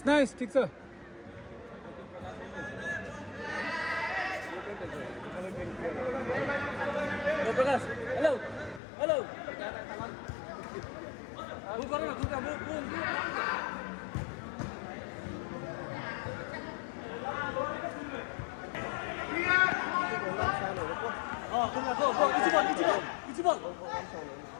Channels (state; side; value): drops out; right; at 8.8 s